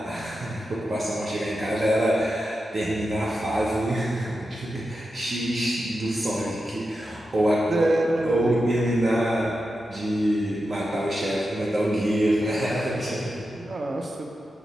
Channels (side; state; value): both; normal; correlation 0.90